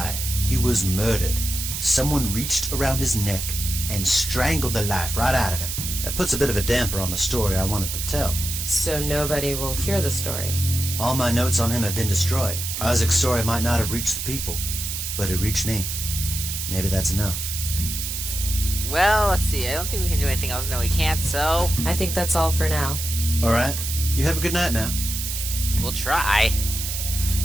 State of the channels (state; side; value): noise; right; hiss, 4 dB below the sound